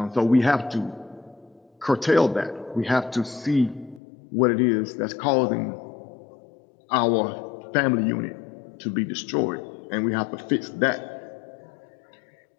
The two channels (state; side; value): drops out; right; at 4.0 s